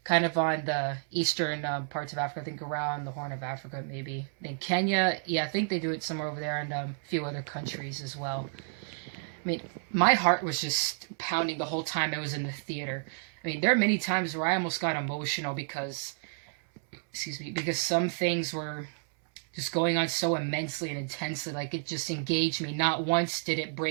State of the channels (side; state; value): left; silent; 57 dB below the other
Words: kind of on the eastern parts of Africa. I think around the Horn of Africa, maybe. In Kenya, yeah, I think they do it somewhere over there, and a few other countries as well. My heart was just pounding the whole time I was in the theater. There are many times where I almost got emotional because some things were just going on so immensely and intensely, it just engaged me. Not once did it